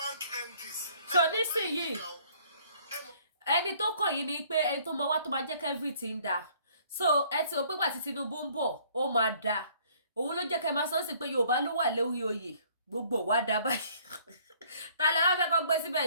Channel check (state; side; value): inverted; both; correlation -0.59